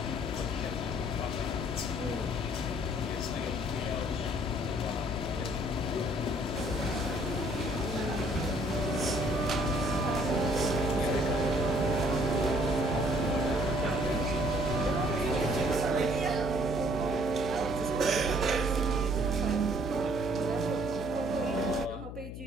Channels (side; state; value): left; noise; hum, 9 dB below the sound